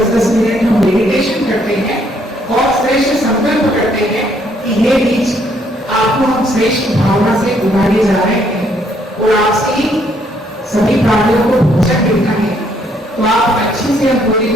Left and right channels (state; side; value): normal; both; correlation 0.69